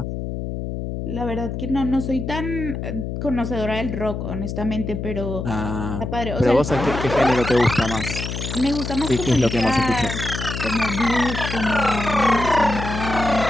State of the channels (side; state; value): left; noise; hum, 5 dB below the sound